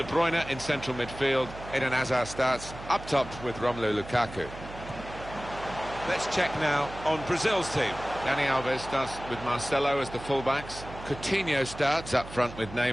Bruyne in central midfield. Eden Hazard starts up top with Romelu Lukaku. Let's check now on Brazil's team. Dani Alves starts with Marcelo as the fullbacks. Coutinho starts up front with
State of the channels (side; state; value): right; noise; hum, 13 dB below the sound